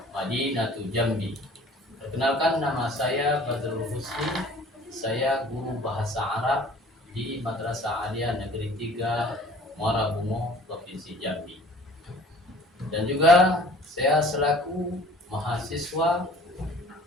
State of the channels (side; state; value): both; normal; correlation 0.50